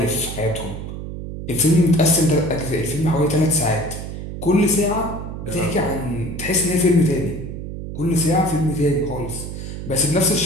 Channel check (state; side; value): noise; right; hum, 8 dB below the sound